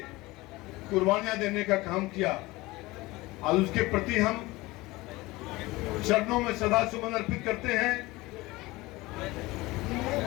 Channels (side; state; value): right; quieter; 20.8 dB